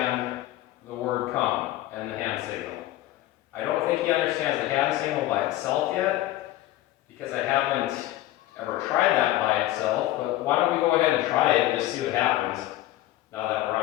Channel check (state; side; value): quieter; right; 15.3 dB